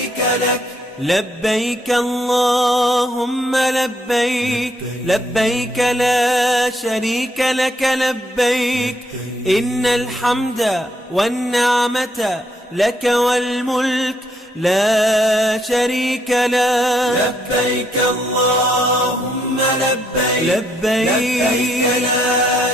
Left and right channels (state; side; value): normal; both; correlation 0.72